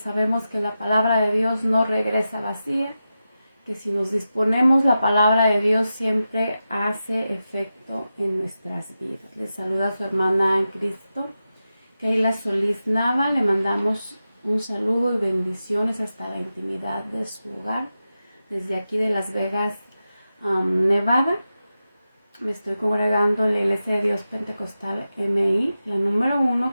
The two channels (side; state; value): both; inverted; correlation -0.91